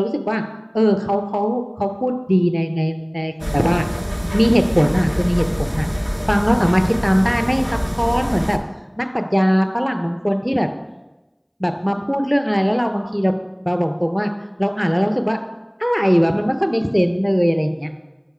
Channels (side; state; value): both; identical; correlation 1.00